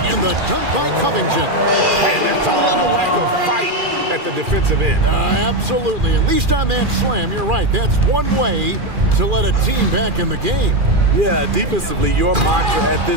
the dunk by Covington. And that's a little lack of fight at the defensive end. Absolutely. At least on that slam, you're right. That's one way to let a team back in the game. Yeah, defensively, your mantra at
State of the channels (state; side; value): late; left; 2.4 ms